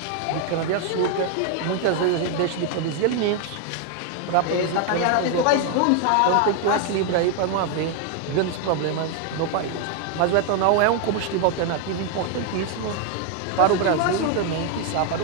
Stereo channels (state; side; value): different; both; correlation 0.01